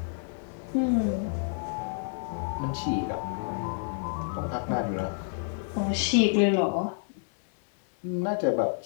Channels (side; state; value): right; silent; digital silence